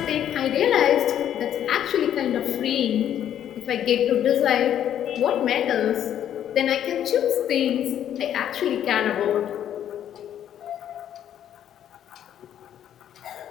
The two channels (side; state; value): right; quieter; 10.3 dB